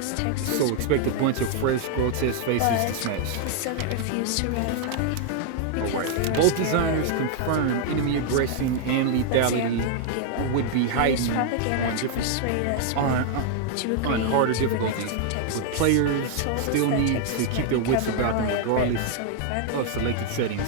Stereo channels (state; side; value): different; both; correlation 0.00